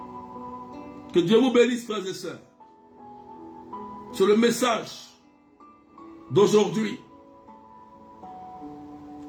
Que Dieu vous bénisse, frères et sœurs. C'est le message d'aujourd'hui.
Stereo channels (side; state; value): both; identical; correlation 1.00